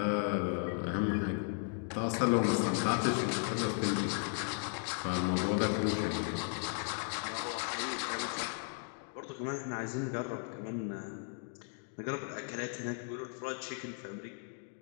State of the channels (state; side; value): silent; right; 54 dB below the other